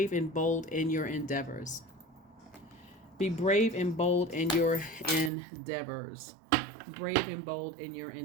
and bold in your endeavors. Be brave and bold in your endeavors. Brave and bold in your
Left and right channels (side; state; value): left; drops out; at 5.3 s